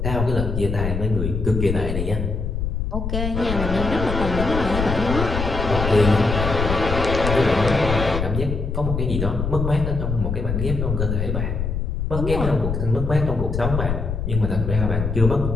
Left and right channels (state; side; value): noise; left; rumble, 2 dB below the sound